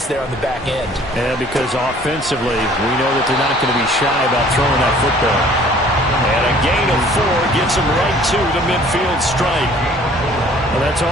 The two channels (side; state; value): both; normal; correlation 0.54